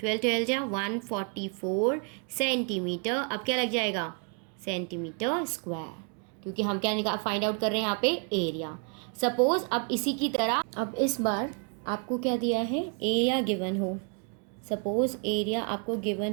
जा 144 सेंटीमीटर। अब क्या लग जाएगा, सेंटीमीटर स्क्वायर, क्योंकि हम क्या फाइंड आउट कर रहे हैं यहाँ पे, एरिया। सपोज अब इसी की तरह, अब इस बार आपको क्या दिया है, एरिया गिवन हो। सपोज एरिया आपको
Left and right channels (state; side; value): quieter; left; 37.2 dB